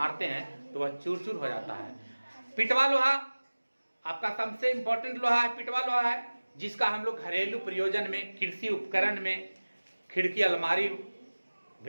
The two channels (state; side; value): inverted; both; correlation -1.00